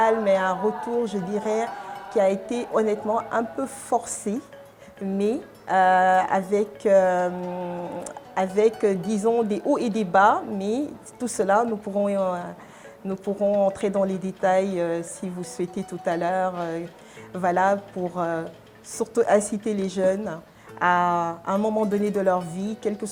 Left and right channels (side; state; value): both; identical; correlation 1.00